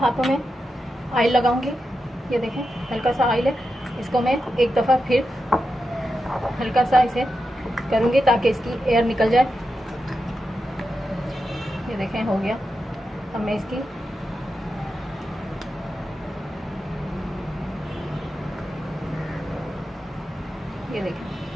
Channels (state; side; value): normal; both; correlation 0.88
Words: में ऑयल लगाऊंगी। ये देखें हल्का सा ऑयल है, इसको मैं एक दफ़ा फिर हल्का सा इसे करूंगी ताकि इसकी एयर निकल जाए। ये देखें हो गया। अब मैं इसकी ये देखें,